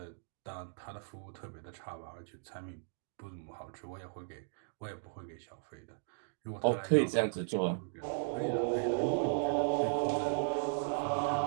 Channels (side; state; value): left; silent; digital silence